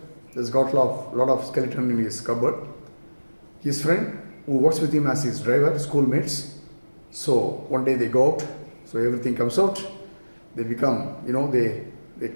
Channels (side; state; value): both; inverted; correlation -1.00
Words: He's got a lot of skeleton in his cupboard. His friend, who works with him as his driver, schoolmates. So one day they go out. So everything comes out. They become, they